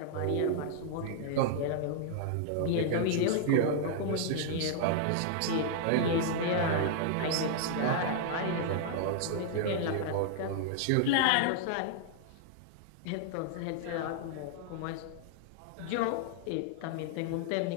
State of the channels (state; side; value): different; both; correlation -0.01